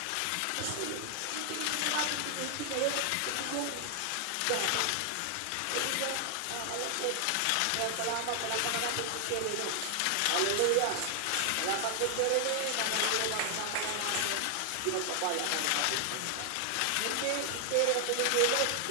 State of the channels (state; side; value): different; both; correlation 0.00